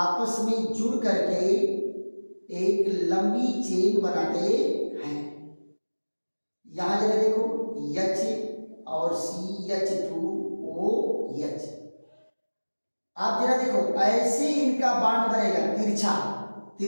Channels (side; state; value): both; inverted; correlation -1.00